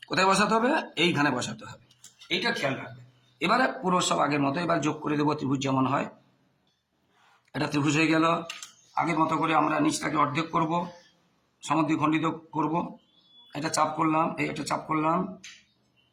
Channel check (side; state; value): both; identical; correlation 1.00